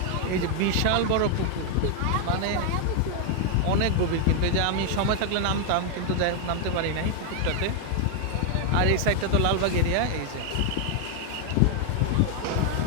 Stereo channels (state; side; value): different; both; correlation 0.00